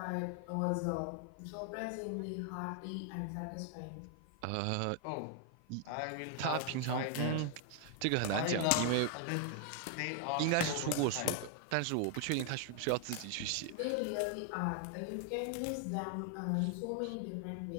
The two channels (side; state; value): both; different; correlation 0.00